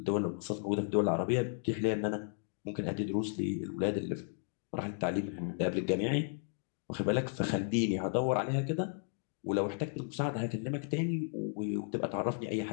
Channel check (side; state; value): right; silent; 55 dB below the other